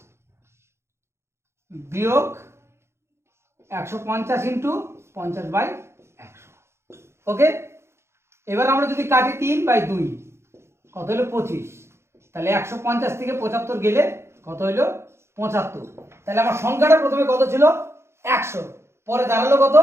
বিয়োগ 150 ইন্টু 50/100। ওকে, এবার আমরা যদি কাটি 3/2 কত হলো 25, তাহলে 150 থেকে 75 গেলে কত হইলো 75। তাহলে আমার সংখ্যাটা প্রথমে কত ছিল 100, পরে দাঁড়ালো কত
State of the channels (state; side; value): late; left; 0.13 ms